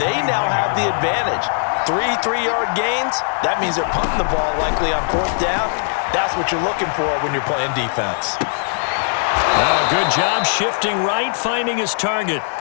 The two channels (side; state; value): right; silent; 66 dB below the other